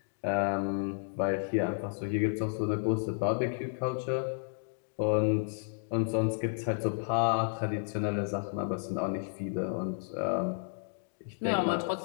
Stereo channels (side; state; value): right; silent; digital silence